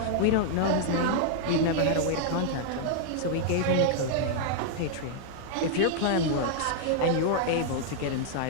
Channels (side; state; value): both; different; correlation -0.01